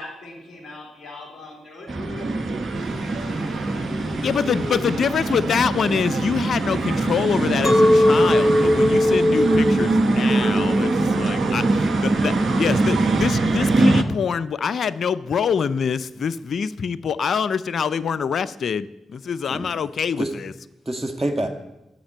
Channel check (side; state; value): both; normal; correlation 0.86